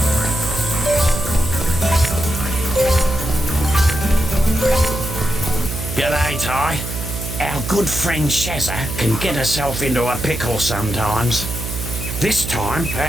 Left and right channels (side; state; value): right; noise; hum, 6 dB below the sound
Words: G'day, Ty. Our good friend Shazza can get herself into a pickle sometimes. This time,